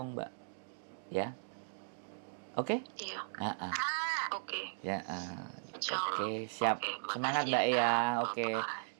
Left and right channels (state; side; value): silent; left; digital silence